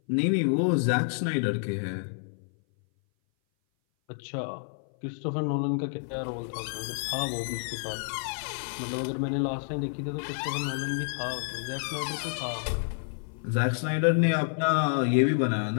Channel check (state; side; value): silent; right; 57 dB below the other